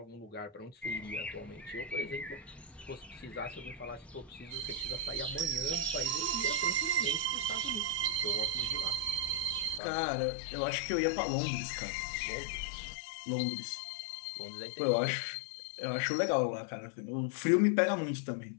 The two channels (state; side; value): drops out; right; at 9.8 s